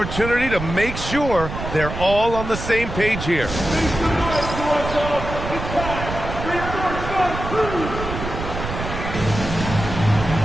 to make sure they're all on the same page here.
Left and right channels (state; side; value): noise; right; rumble, 7 dB below the sound